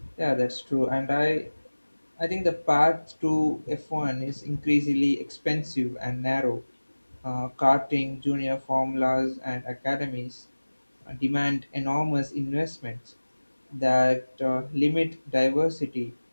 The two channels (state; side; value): inverted; both; correlation -1.00